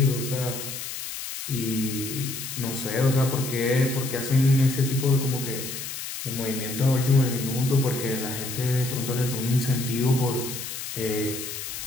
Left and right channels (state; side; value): noise; left; hiss, 7 dB below the sound